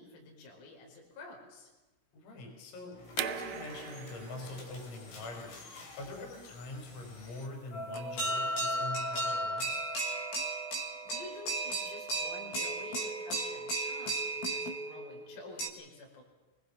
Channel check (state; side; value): late; right; 16 ms